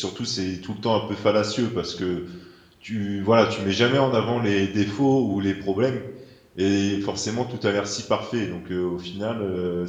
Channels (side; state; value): both; identical; correlation 1.00